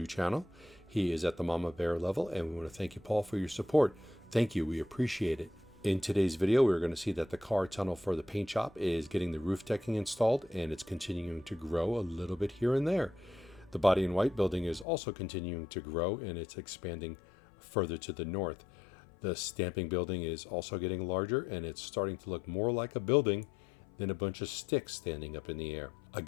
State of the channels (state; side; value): drops out; right; at 14.9 s